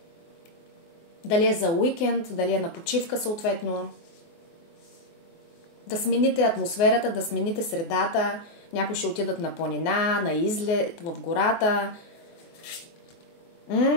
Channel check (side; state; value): right; late; 24 ms